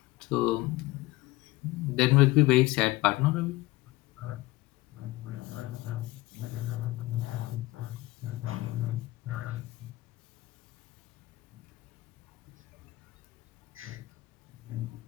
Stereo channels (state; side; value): quieter; right; 19.3 dB